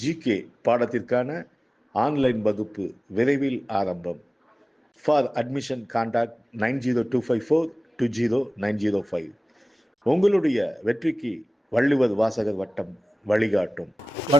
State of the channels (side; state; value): both; normal; correlation 0.97